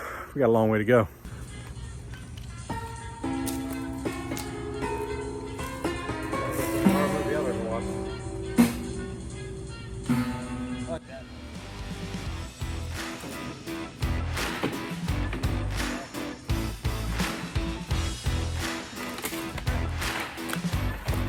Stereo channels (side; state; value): both; identical; correlation 1.00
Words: we got a long way to go.